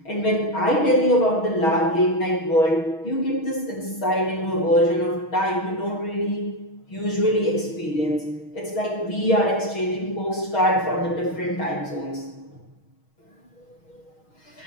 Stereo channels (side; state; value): right; late; 6.3 ms